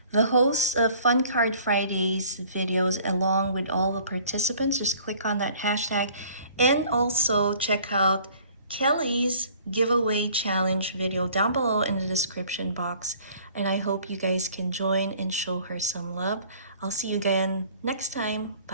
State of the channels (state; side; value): inverted; both; correlation -0.53